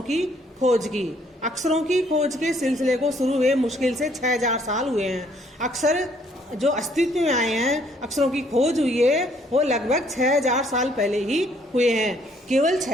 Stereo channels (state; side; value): normal; both; correlation 0.65